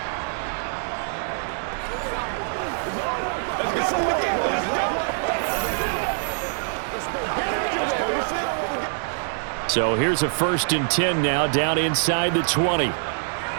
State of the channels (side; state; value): left; silent; digital silence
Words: So here's a 1st and 10 now down inside the 20.